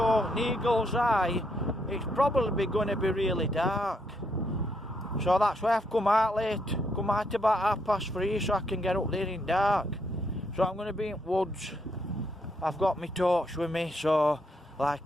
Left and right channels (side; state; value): both; normal; correlation 0.75